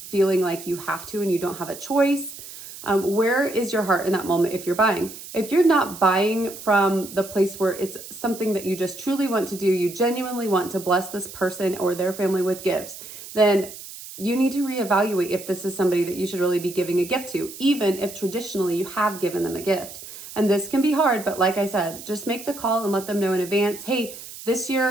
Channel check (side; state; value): right; noise; hiss, 14 dB below the sound